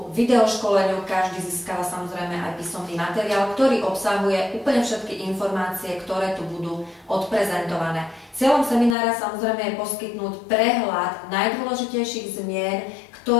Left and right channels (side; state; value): right; drops out; at 9.0 s